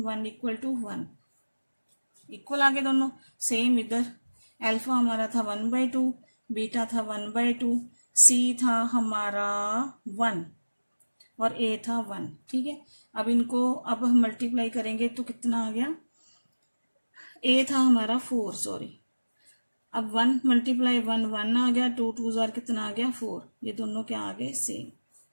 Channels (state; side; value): inverted; both; correlation -1.00